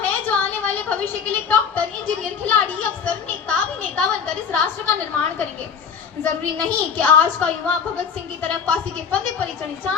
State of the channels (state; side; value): quieter; right; 6.6 dB